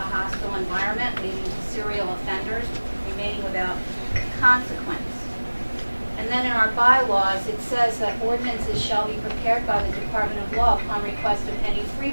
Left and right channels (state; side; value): inverted; both; correlation -1.00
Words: hostile environment, leading to serial offenders remaining without consequence. And then in our bylaws, it says that ordinances shall be prepared by the Department of Law upon request of any